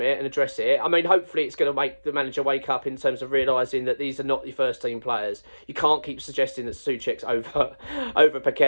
it and address it. I mean, hopefully it's going to make the manager wake up in terms of realising that these are not your first team players. You can't keep suggesting that Souček's over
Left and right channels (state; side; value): inverted; both; correlation -1.00